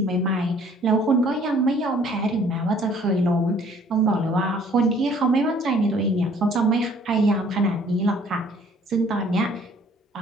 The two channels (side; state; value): both; normal; correlation 0.57